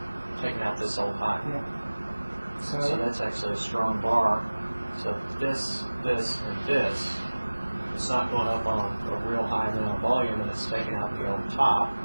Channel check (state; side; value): inverted; both; correlation -1.00